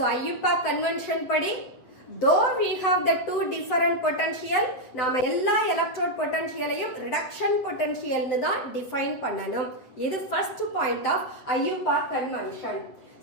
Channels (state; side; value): late; right; 8.2 ms